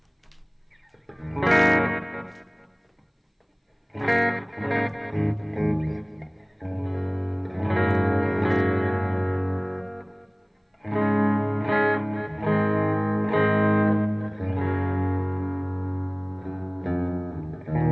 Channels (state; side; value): identical; both; correlation 1.00